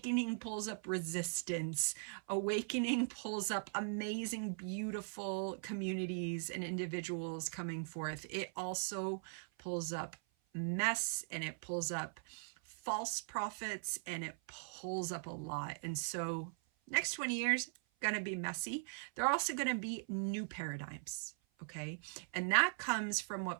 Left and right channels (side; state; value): left; silent; 51 dB below the other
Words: pulls up resistance. Awakening pulls up amazing, beautiful communities and individuals coming forth. It also pulls up mess, and it pulls up false prophets, and it pulls up a lot. And so next 20 years, going to be messy. They're also going to be new paradigms. Okay. And that comes from